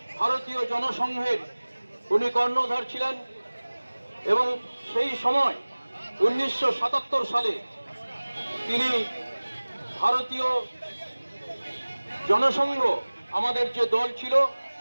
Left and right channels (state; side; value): inverted; both; correlation -1.00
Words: ভারতীয় জনসংঘের উনি কর্ণধার ছিলেন এবং সেই সময় 1977 সালে তিনি ভারতীয় জনসংঘ, আমাদের যে দল ছিল,